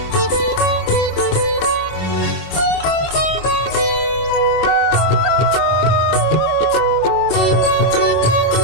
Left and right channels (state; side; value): late; right; 26 ms